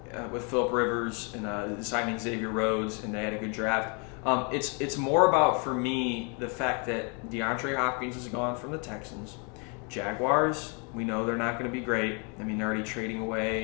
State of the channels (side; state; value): right; quieter; 35.6 dB